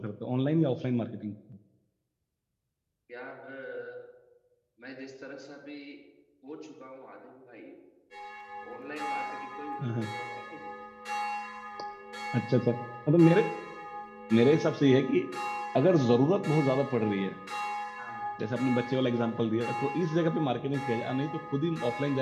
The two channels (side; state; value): both; identical; correlation 1.00